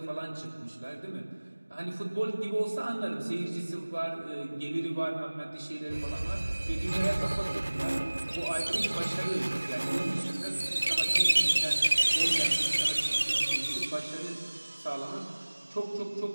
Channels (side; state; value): both; inverted; correlation -1.00